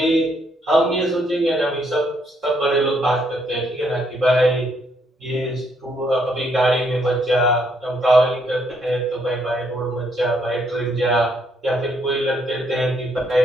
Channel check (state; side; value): normal; both; correlation 0.72